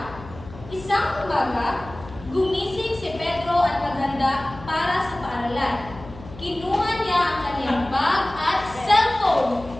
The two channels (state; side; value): noise; left; hum, 16 dB below the sound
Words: Isang umaga, gumising si Pedro at naghanda para sa paaralan. Kinuha niya ang kanyang bag at cellphone.